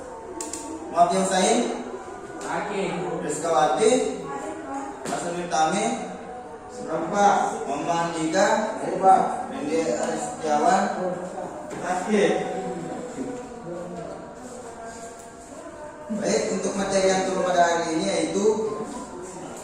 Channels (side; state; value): both; identical; correlation 1.00